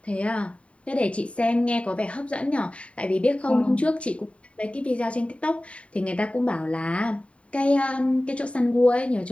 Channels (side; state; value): right; late; 0.063 ms